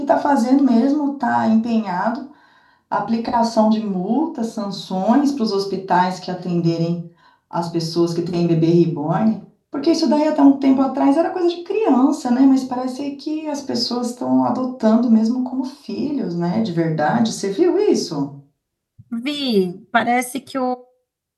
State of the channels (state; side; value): identical; both; correlation 1.00